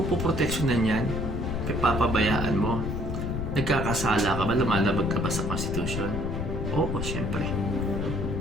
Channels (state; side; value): noise; left; rumble, 3 dB below the sound